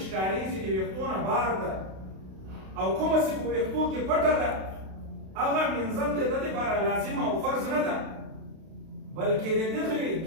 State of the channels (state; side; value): late; left; 32 ms